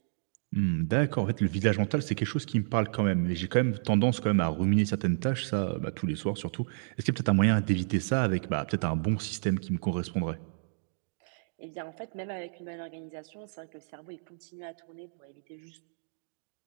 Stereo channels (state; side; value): silent; left; digital silence